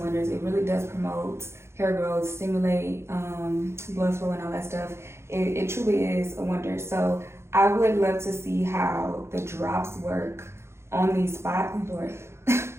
It really does promote hair growth, stimulate blood flow and all that stuff. It truly is a wonder. So I would love to see how the drops work on these spots. Oh Lord,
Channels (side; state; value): left; late; 0.13 ms